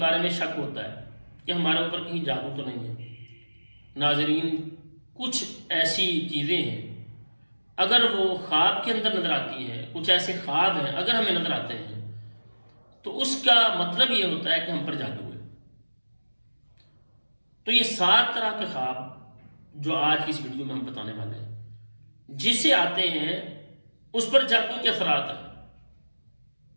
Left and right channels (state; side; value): inverted; both; correlation -1.00